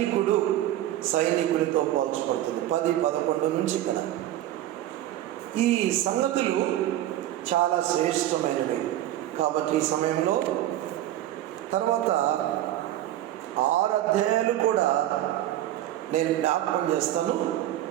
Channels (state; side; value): quieter; left; 13.4 dB